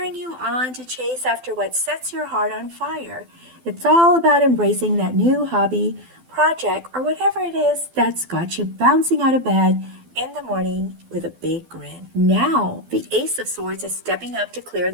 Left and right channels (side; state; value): left; late; 12 ms